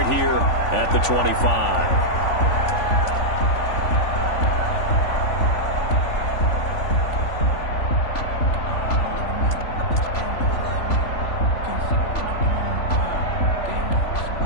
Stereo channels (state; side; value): late; right; 3.5 ms